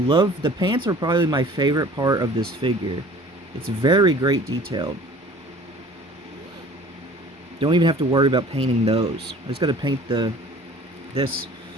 pants are probably my favorite part of this figure. It's very great detailed. Don't even have to worry about painting those. I just got to paint the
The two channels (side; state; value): both; normal; correlation 0.48